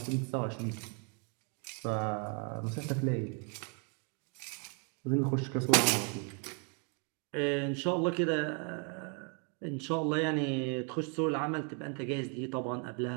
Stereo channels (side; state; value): left; quieter; 38.4 dB